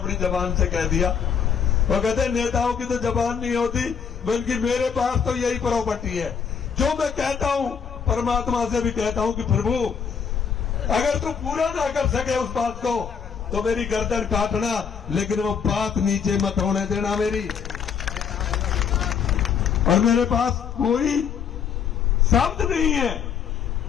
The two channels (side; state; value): right; quieter; 7.0 dB